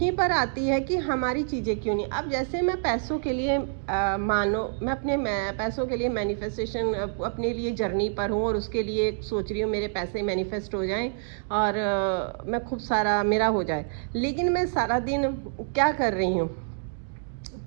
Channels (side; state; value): left; silent; digital silence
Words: पर आती है कि हमारी चीज़ें क्यों नहीं। अब जैसे मैं पैसों के लिए मानो मैं पैसों के लिए मैनिफेस्टेशन अपने लिए जर्नी पर हूँ, और उसके लिए सोच रही हूँ मेरे पैसे मैनिफेस्ट हो जाएं, और मैं खूब सारा मेरा हो जाए। लेकिन मैं सारा दिन क्या कर रही हूँ,